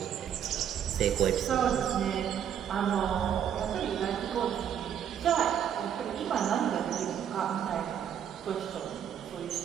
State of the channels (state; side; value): quieter; left; 9.1 dB